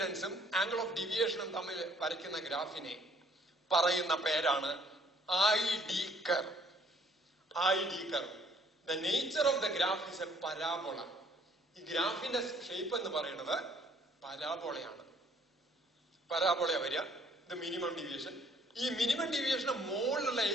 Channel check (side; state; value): both; normal; correlation 0.60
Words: ആംഗിൾ ഓഫ് ഡീവിയേഷനും തമ്മിൽ വരയ്ക്കുന്ന ഗ്രാഫിനെ പറയുന്ന പേരാണ് ID curve. ID curve. The nature of the graph is a parabola. ഈ ഗ്രാഫിന്റെ ഷേപ്പ് എന്ന് പറയുന്നത് പരാബോളയാണ്. പരാബോള വരിക, ഇത് മിനിമം ഡീവിയേഷൻ. ഈ മിനിമം ഡീവിയേഷന് മുകളിലുള്ള